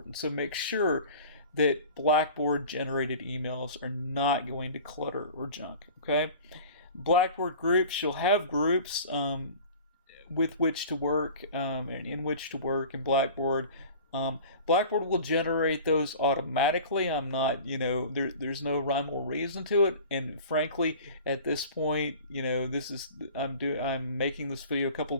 So make sure that Blackboard generated emails are not going to clutter or junk, okay? Blackboard groups, you'll have groups with which to work and in which to work in Blackboard. Blackboard will generate those automatically. I'm not, there's no rhyme or reason to it. And frankly, at this point, I'm making this video a couple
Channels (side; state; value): both; inverted; correlation -0.41